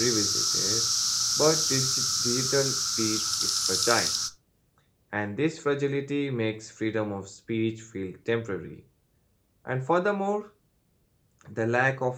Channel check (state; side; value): identical; both; correlation 1.00